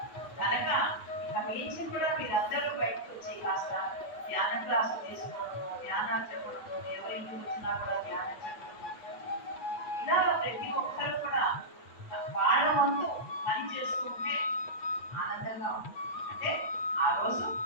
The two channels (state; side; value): late; right; 8.3 ms